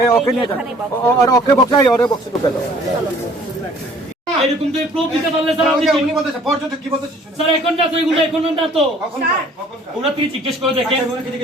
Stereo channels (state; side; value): normal; both; correlation 0.55